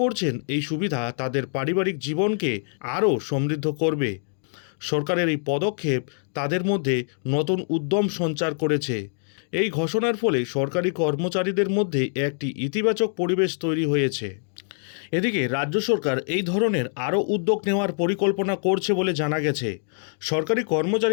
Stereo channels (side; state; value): right; silent; 62 dB below the other